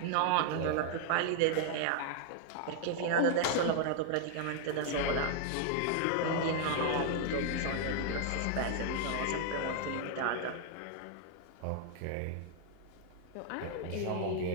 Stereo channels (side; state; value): both; different; correlation 0.00